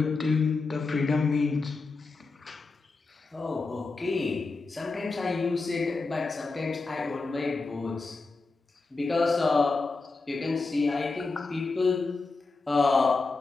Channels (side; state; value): right; quieter; 3.8 dB